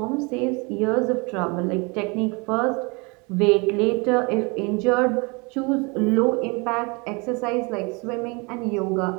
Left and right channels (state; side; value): quieter; left; 29.2 dB